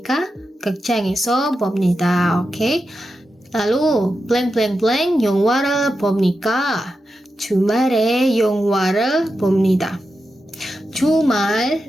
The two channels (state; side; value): normal; both; correlation 0.89